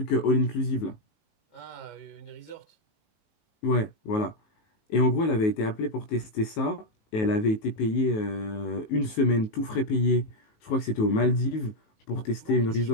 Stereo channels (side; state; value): right; late; 19 ms